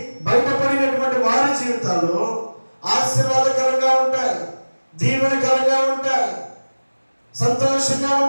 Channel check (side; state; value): both; inverted; correlation -1.00